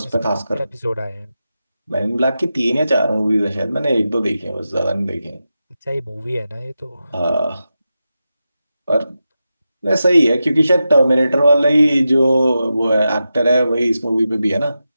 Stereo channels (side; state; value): both; inverted; correlation -0.90